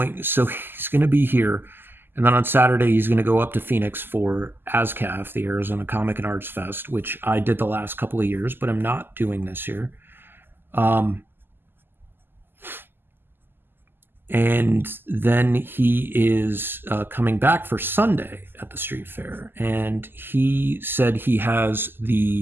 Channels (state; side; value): late; left; 0.098 ms